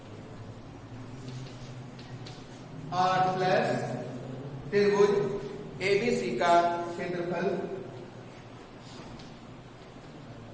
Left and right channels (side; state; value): both; identical; correlation 1.00